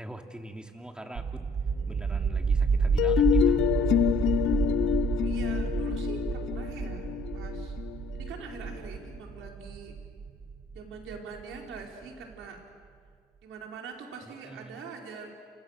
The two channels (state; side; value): normal; both; correlation 0.58